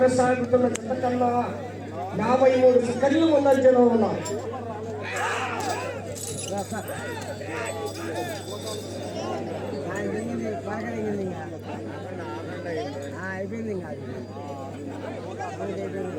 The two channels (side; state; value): both; identical; correlation 1.00